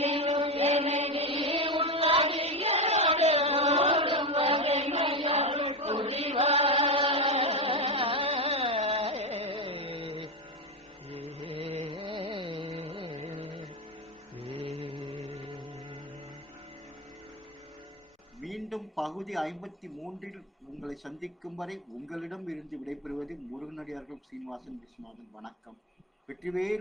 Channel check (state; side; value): normal; both; correlation 0.13